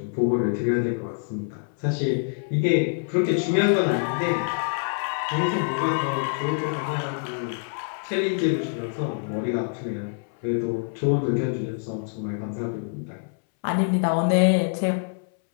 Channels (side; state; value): right; silent; 60 dB below the other